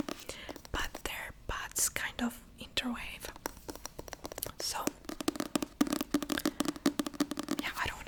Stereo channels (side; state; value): both; identical; correlation 1.00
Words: But their paths kind of interweave. So yeah, I don't